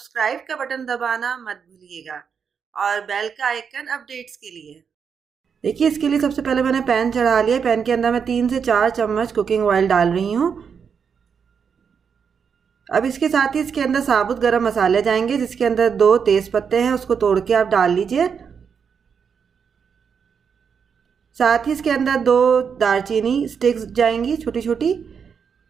का बटन दबाना मत भूलिएगा और बेल का आइकन अपडेट्स के लिए। देखिए, इसके लिए सबसे पहले मैंने पैन चढ़ा लिया। पैन के अंदर मैं 3 से 4 चम्मच कुकिंग ऑयल डाल रही हूँ। अब इसके साथ ही इसके अंदर साबुत गरम मसाले जाएंगे, जिसके अंदर 2 तेज पत्ते हैं, उसको तोड़ के आप डाल लीजिए। साथ ही इसके अंदर 2 दालचीनी स्टिक्स जाएंगी छोटी छोटी,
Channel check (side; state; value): left; quieter; 6.6 dB